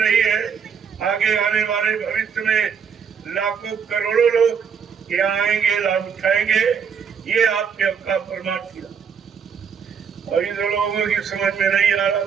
रही है, आगे आने वाले भविष्य में लाखों करोड़ों लोग यहाँ आएंगे, लाभ उठाएंगे। ये आपके आपका परमार्थी लाभ। और इन लोगों की समझ में नहीं आ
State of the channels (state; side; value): quieter; left; 6.8 dB